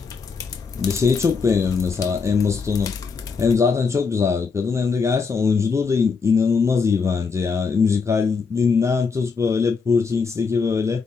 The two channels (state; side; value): quieter; right; 5.1 dB